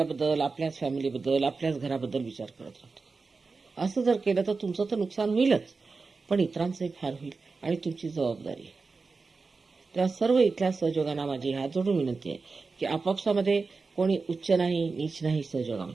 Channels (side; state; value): left; quieter; 4.3 dB